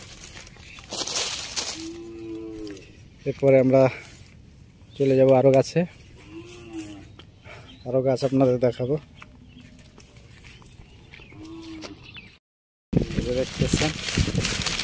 এরপরে আমরা চলে যাব আরো গাছে, আরো গাছ আপনাদের দেখাবো। দেখতেছেন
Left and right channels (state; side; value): identical; both; correlation 1.00